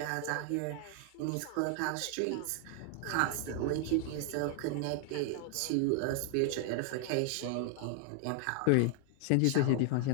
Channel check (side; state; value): both; different; correlation 0.00